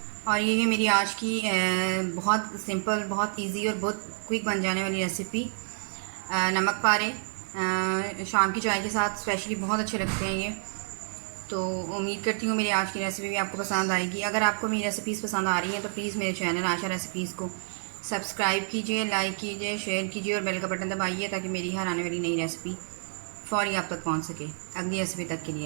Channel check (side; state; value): left; silent; digital silence